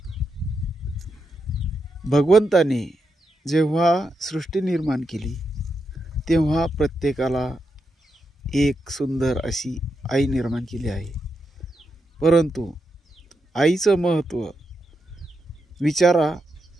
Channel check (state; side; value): normal; both; correlation 0.85